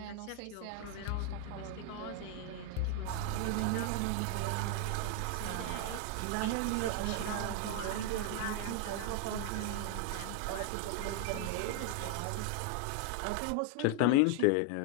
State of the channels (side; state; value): both; different; correlation 0.00